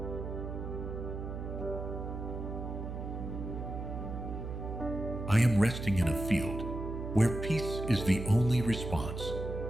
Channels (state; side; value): noise; right; hum, 6 dB below the sound